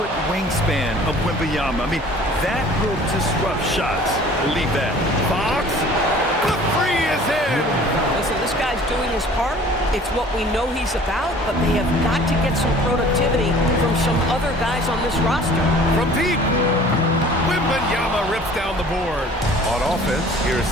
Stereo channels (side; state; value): both; normal; correlation 0.49